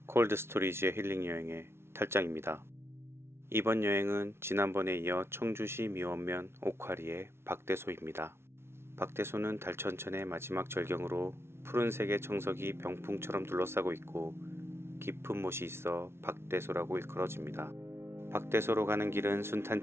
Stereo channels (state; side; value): late; left; 0.12 ms